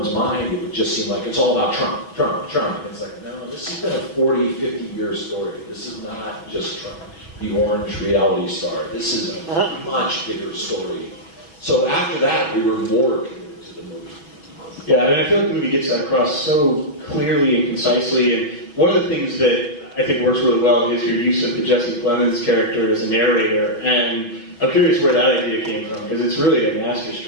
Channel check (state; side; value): late; right; 5.7 ms